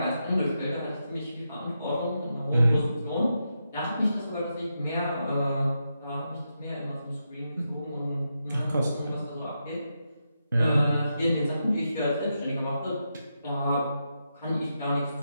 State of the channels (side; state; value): both; inverted; correlation -0.85